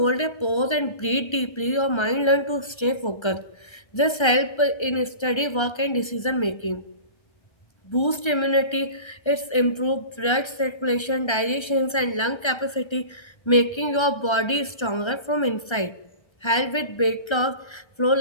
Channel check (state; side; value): late; right; 1.3 ms